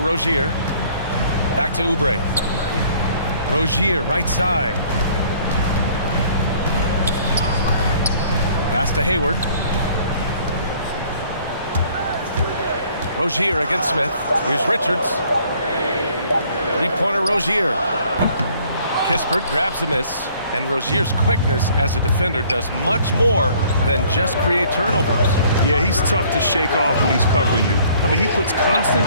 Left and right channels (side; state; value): both; inverted; correlation -0.58